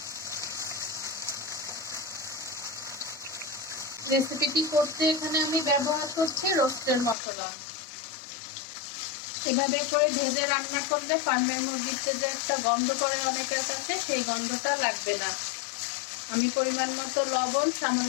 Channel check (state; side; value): drops out; right; at 7.2 s